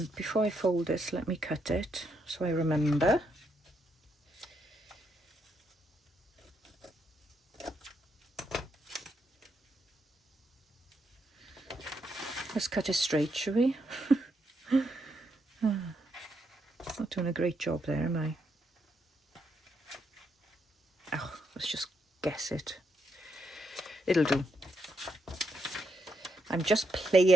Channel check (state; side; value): normal; both; correlation 0.79